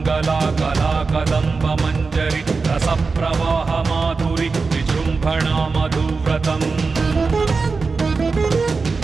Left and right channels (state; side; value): quieter; left; 4.4 dB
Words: कला कदम्ब मञ्जरी रसप्रवाह माधुरी विजृम्भणा मधुव्रतम्